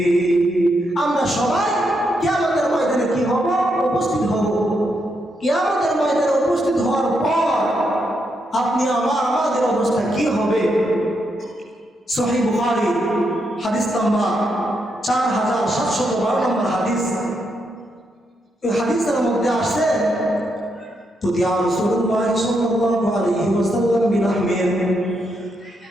আমরা সবাই কিয়ামতের ময়দানে কি হব? উপস্থিত হব। কিয়ামতের ময়দানে উপস্থিত হওয়ার পর আপনি আমাদের অবস্থা কি হবে? সহিহ বুখারী হাদিস নাম্বার 4712 নম্বর হাদিস। এই হাদিসের মধ্যে আসছে, তুদিয়া রাসূলুল্লাহ সাল্লাল্লাহু আলাইহি ওয়াসাল্লাম বিলাহমিন।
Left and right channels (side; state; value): both; normal; correlation 0.80